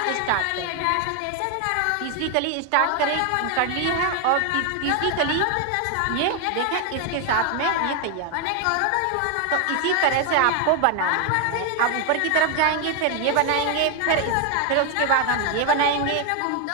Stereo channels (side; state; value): both; different; correlation 0.01